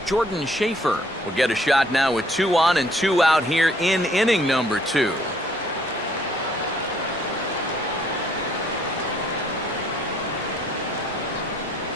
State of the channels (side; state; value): both; normal; correlation 0.64